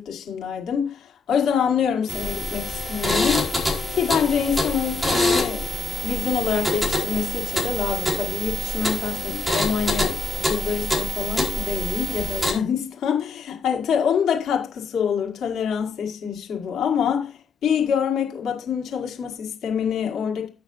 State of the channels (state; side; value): quieter; right; 4.6 dB